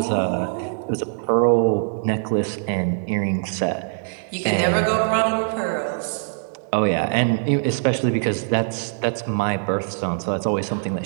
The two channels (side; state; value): left; silent; digital silence